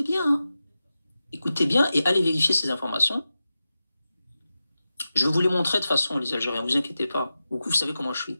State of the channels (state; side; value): inverted; both; correlation -0.93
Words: bien et allez vérifier ces informations. Je vais vous les montrer de façon, les Algériens, vous inquiétez pas. Vous savez comment je suis.